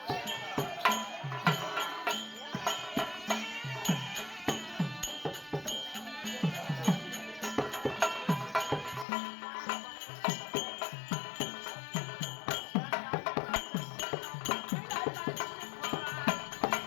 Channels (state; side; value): drops out; right; at 9.1 s